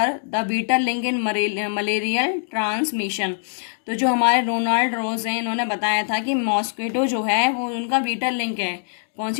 the beta link in malarial transmission. तो जो हमारे रोनाल्ड रोज हैं, इन्होंने बताया था कि मॉस्किटो जो है वो उनका बीटा लिंक है कौन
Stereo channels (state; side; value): silent; right; digital silence